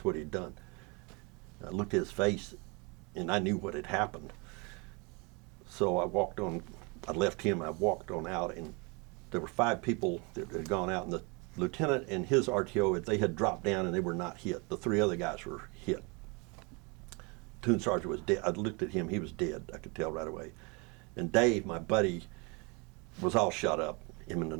he'd done. I looked at his face, and I knew what had happened. So I left him, I walked on out, and there were 5 people that had gone out, and the lieutenant and his RTO, they had dropped down and they were not hit. The 3 other guys were hit. Platoon sergeant was dead. I looked at him, he was dead, I could tell right away. And Dave, my buddy, was all shot up, him and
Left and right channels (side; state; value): left; quieter; 30.3 dB